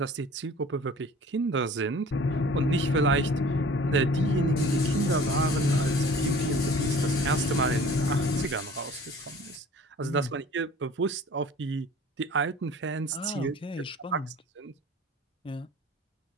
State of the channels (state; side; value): normal; both; correlation 0.47